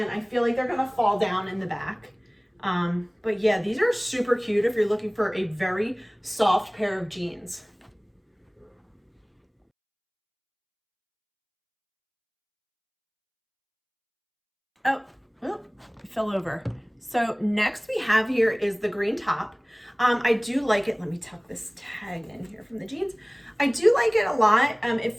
I feel like they're gonna fall down in the back. But yeah, these are super cute if you're looking for a very soft pair of jeans. Oh, it fell over. So next we have here is the green top. I do like it. Let me tuck this tag in here from the jeans. I do like it a lot. It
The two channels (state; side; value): identical; both; correlation 1.00